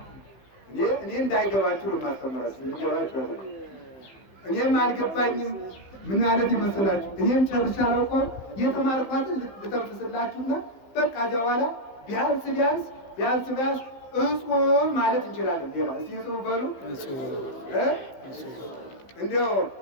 እኔ እንዳይገባችሁ ነው የማስተምራችሁ። ይገባችሁ? እኔም አልገባኝም። ምን ማለት ይመስላችሁ? እኔም ጨርሻ አላውቀውም። የተማርኳትን ልተንፍስላችሁና በቃ እዚያ በኋላ ቢያንስ እጹብ ማለት እንችላለን። ሌላ እስቲ እጹብ በሉ። እንዲያው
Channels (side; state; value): right; late; 15 ms